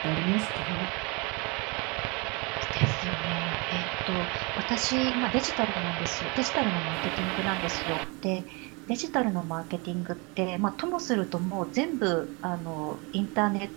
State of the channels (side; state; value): left; quieter; 29.5 dB